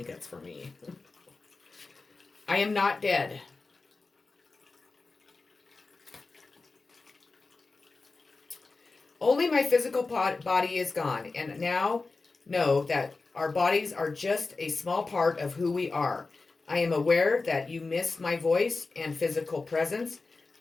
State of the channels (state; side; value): quieter; right; 3.8 dB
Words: that's for me. I am not dead. Only my physical body is gone, and now know that our bodies are just a small part of who we are. I am aware that you miss my voice and physical presence,